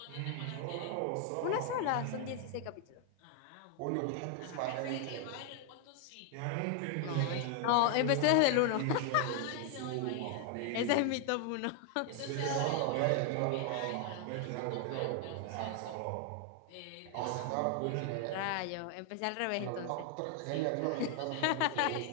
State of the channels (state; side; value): different; both; correlation 0.00